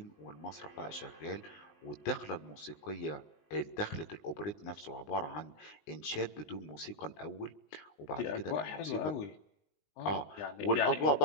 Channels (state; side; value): late; right; 19 ms